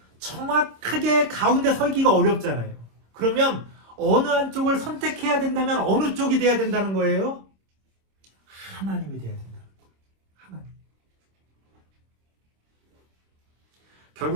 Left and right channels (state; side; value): late; left; 26 ms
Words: 정확하게 가운데 서기가 어렵잖아요. 그러면 어느 한쪽을 선택해야 된다면 어느 쪽이 돼야 된다는 거예요? 하나님이 돼야 된다는 거예요. 하나님.